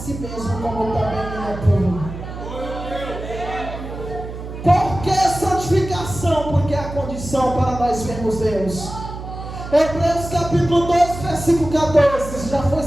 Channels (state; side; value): noise; right; hum, 10 dB below the sound